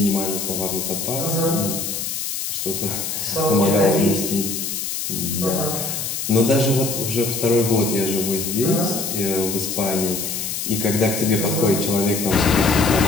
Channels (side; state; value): left; noise; hiss, 4 dB below the sound